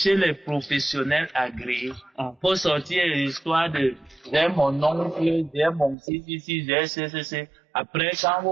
les professionnels agréés. Pour sortir l'histoire de j'ai mon oncle, j'ai mon si, j'ai c. Après, quand vous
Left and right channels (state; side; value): drops out; left; at 6.0 s